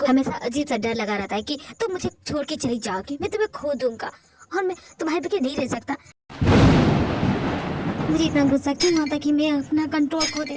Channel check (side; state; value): both; identical; correlation 1.00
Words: हमेशा अजीब सा डर लगा रहता है कि तुम मुझे छोड़ के चली जाओगी, मैं तुम्हें खो दूंगा और मैं तुम्हारे बगैर नहीं रह सकता। मुझे इतना गुस्सा क्यों आता कि मैं अपना कंट्रोल खो